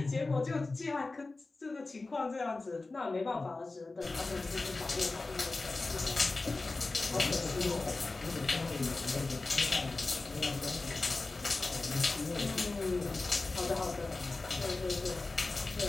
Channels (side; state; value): right; quieter; 3.4 dB